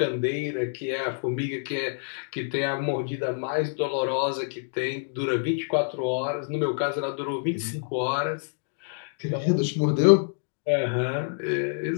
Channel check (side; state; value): right; silent; digital silence